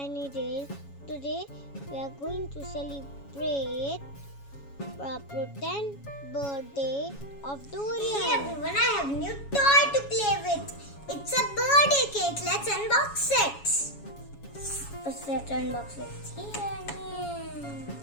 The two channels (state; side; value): late; right; 7.2 ms